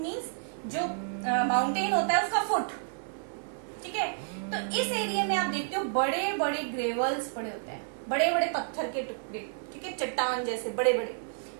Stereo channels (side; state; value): left; silent; 58 dB below the other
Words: जो माउंटेन होता है उसका फुट, ठीक है. तो इस एरिया में आप देखते हो बड़े बड़े ग्रेवल्स पड़े होते हैं, बड़े बड़े पत्थर के टुकड़े, ठीक है, चट्टान जैसे बड़े बड़े,